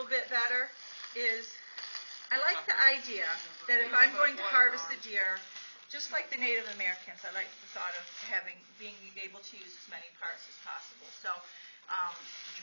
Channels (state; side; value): inverted; both; correlation -1.00